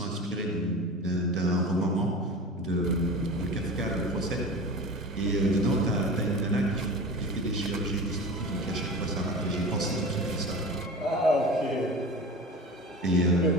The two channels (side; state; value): both; normal; correlation 0.33